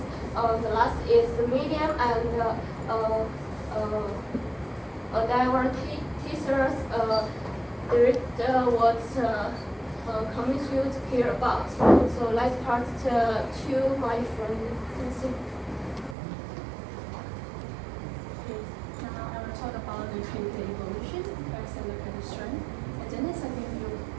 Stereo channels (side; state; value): left; drops out; at 16.2 s